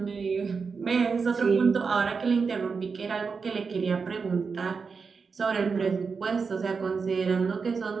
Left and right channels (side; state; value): left; quieter; 5.2 dB